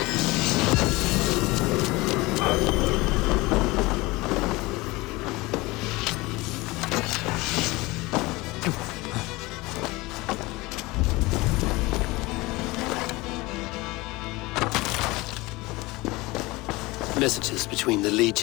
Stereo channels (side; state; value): right; quieter; 21.9 dB